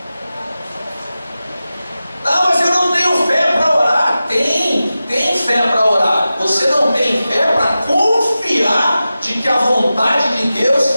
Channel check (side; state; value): both; inverted; correlation -0.94